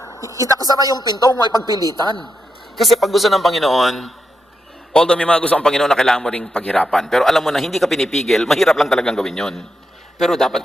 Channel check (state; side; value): normal; both; correlation 0.85